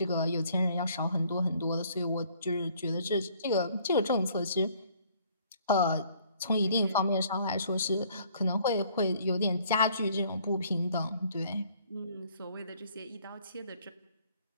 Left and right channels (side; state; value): both; inverted; correlation -0.60